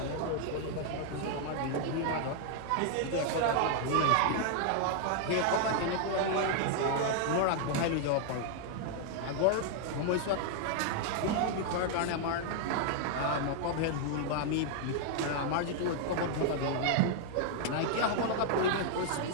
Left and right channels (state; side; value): different; both; correlation 0.00